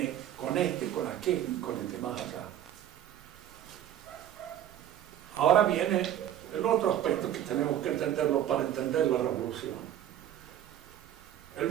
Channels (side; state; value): left; quieter; 11.2 dB